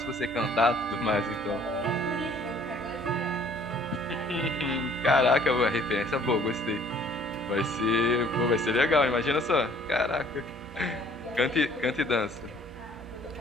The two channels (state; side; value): normal; both; correlation 0.57